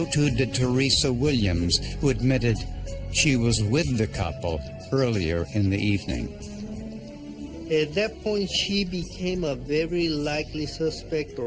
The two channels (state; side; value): identical; both; correlation 1.00